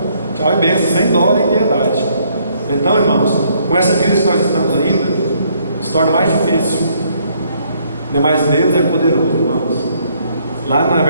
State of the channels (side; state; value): both; inverted; correlation -0.68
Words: Tchau e bênção, sem dó nem piedade. Então, irmãos, com essa crise que nós estamos ainda, se torna mais difícil. Mas Deus é poderoso, irmãos. Lá na